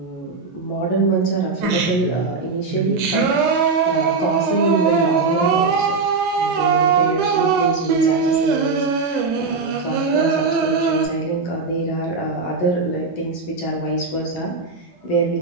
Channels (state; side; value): quieter; left; 4.3 dB